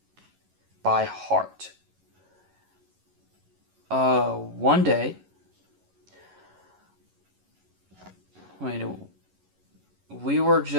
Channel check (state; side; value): late; left; 11 ms